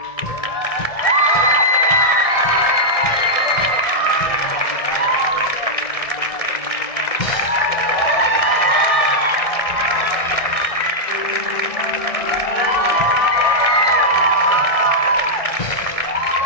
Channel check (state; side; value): late; right; 1.7 ms